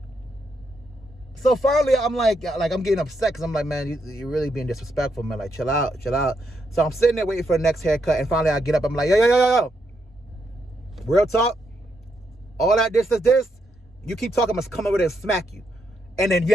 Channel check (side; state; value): both; normal; correlation 0.79